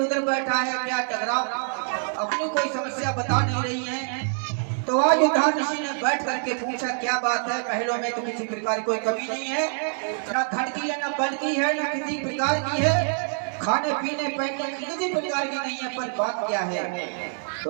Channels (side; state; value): left; silent; 61 dB below the other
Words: बैठा है, क्या झगड़ा, अपनी कोई समस्या बता नहीं रही है। तो आज उद्धार ऋषि ने बैठ करके पूछा, क्या बात है, महलों में तो किसी प्रकार की कोई कमी नहीं है, ना धन की है, ना बल की है, ना किसी प्रकार की है, खाने पीने पहनने की किसी प्रकार की नहीं है, पर बात क्या है